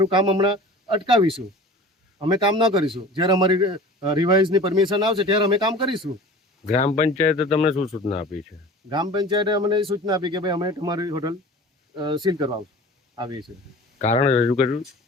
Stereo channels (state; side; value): normal; both; correlation 0.41